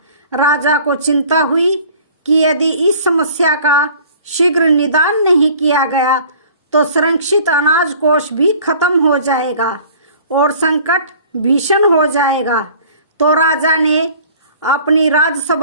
राजा को चिंता हुई कि यदि इस समस्या का शीघ्र निदान नहीं किया गया तो संरक्षित अनाज कोष भी खत्म हो जाएगा और संकट भीषण हो जाएगा। तो राजा ने अपनी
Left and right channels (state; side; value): inverted; both; correlation -0.50